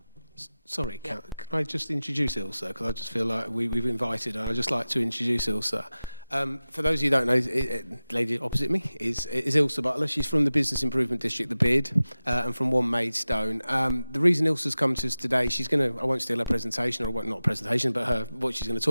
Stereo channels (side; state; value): both; inverted; correlation -0.95